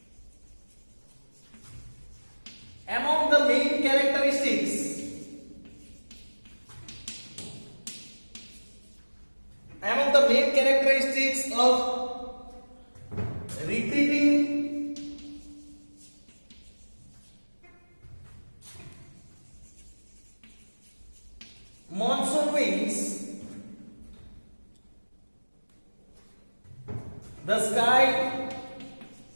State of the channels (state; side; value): inverted; both; correlation -1.00